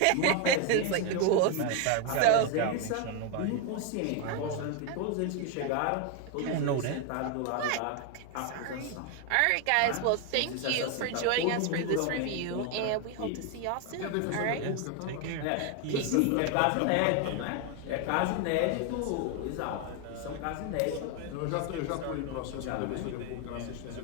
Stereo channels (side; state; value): both; different; correlation 0.01